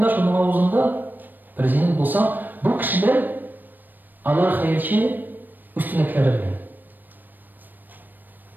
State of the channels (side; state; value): left; late; 0.090 ms